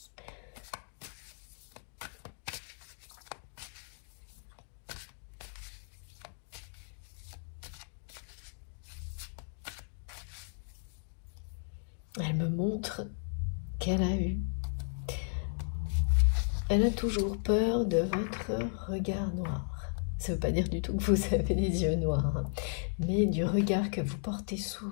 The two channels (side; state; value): right; silent; digital silence